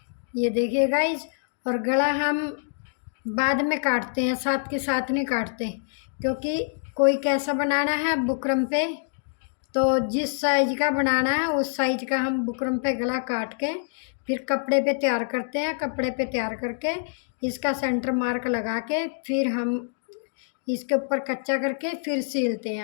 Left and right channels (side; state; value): right; silent; digital silence